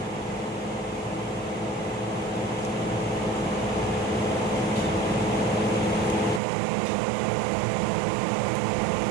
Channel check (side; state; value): left; drops out; at 6.4 s